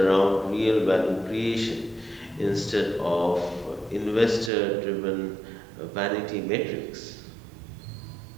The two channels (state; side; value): drops out; left; at 4.5 s